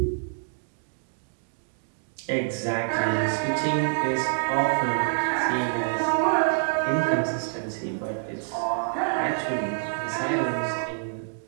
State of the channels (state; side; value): silent; left; digital silence